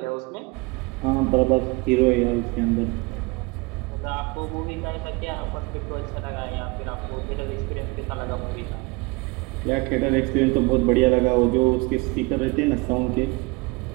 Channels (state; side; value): quieter; left; 26.2 dB